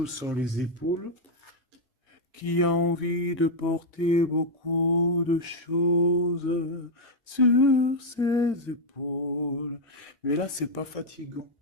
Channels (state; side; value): normal; both; correlation -0.01